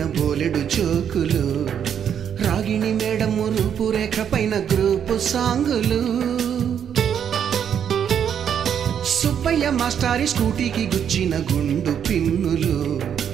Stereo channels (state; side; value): quieter; left; 8.5 dB